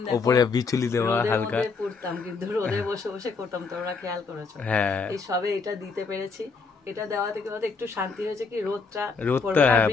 উপরে বিচুলি দেওয়া হালকা পড়তাম, কিন্তু রোদে বসে বসে করতাম, তোমরা খেয়াল করেছো? হ্যাঁ, এই সবে এটা দিতে পেরেছি। এটা দেওয়া থেকে একটু শান্তি হয়েছে, কি রোদটা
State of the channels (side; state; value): right; quieter; 4.6 dB